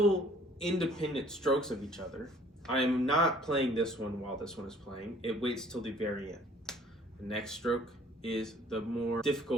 independent strokes of each other. I am not playing this one while this one is playing. It waits till the very end. The next stroke is the more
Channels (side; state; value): both; normal; correlation 0.56